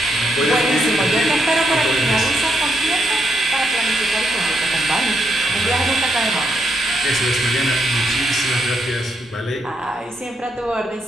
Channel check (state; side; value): normal; both; correlation 0.78